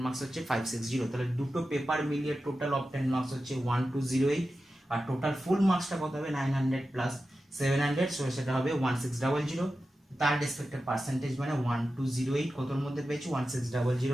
মার্কস হচ্ছে 560। তাহলে দুটো পেপার মিলিয়ে টোটাল অবটেন মার্কস হচ্ছে 1208। আর টোটাল ফুল মার্কসটা কত হবে, 900 + 700, সো সেটা হবে 1600। তার রেসপেক্টেড পার্সেন্টেজ মানে 1208 কতর মধ্যে পেয়েছি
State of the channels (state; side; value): normal; both; correlation 0.92